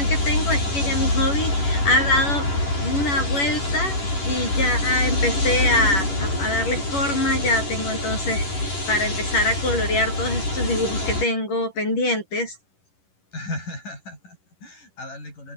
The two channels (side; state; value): right; late; 11 ms